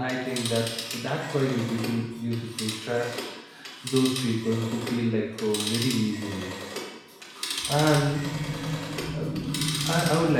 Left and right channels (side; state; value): both; identical; correlation 1.00